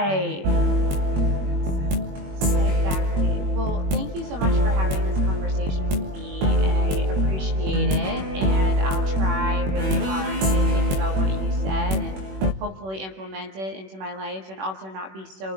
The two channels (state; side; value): late; left; 21 ms